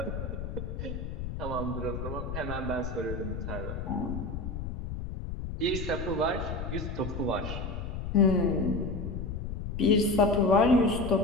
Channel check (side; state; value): left; noise; rumble, 5 dB below the sound